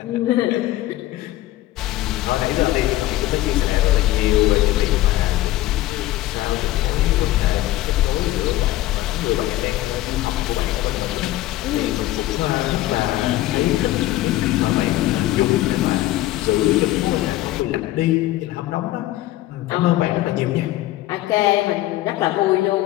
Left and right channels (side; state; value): right; quieter; 15.8 dB